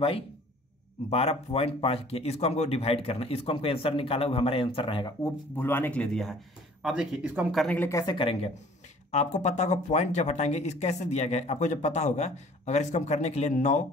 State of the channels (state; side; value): normal; both; correlation 0.52